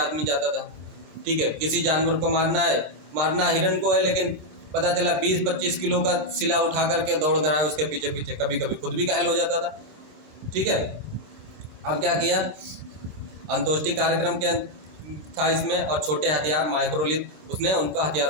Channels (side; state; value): left; late; 26 ms